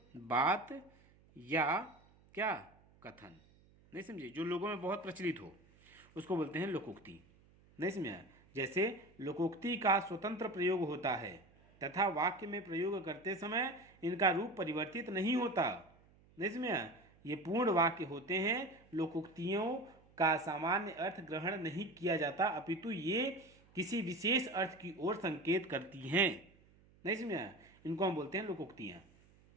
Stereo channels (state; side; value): noise; right; hum, 28 dB below the sound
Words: बात या क्या, कथन। नहीं समझे, जो लोगों में बहुत प्रचलित हो उसको बोलते हैं लोकोक्ति। नहीं समझा। जैसे लोकोक्ति का स्वतंत्र प्रयोग होता है तथा वाक्य में प्रयोग करते समय इनका रूप परिवर्तित नहीं होता। नहीं समझा, ये पूर्ण वाक्य होते हैं। लोकोक्तियों का सामान्य अर्थ ग्रहण नहीं किया जाता, अपितु ये किसी विशेष अर्थ की ओर संकेत करती हैं। नहीं समझा, इनको हम बोलते हैं लोकोक्तियाँ।